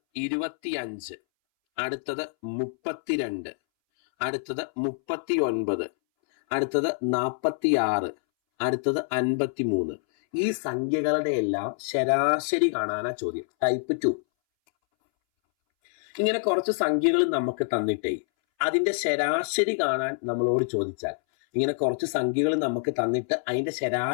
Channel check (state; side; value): silent; right; 61 dB below the other